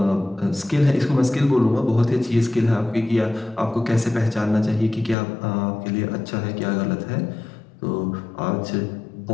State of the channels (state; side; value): drops out; right; at 5.2 s